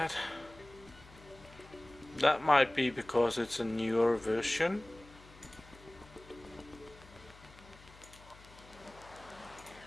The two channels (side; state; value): left; noise; hum, 21 dB below the sound